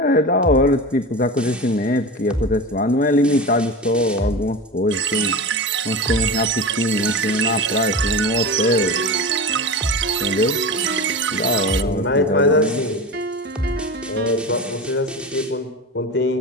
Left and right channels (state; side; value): normal; both; correlation 0.28